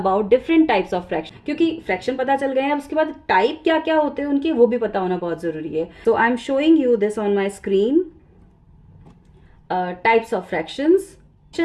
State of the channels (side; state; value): both; identical; correlation 1.00